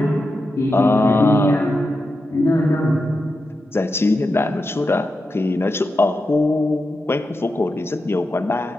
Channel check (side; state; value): both; normal; correlation 0.88